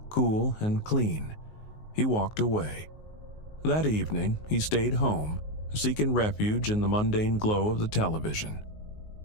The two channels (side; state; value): right; late; 19 ms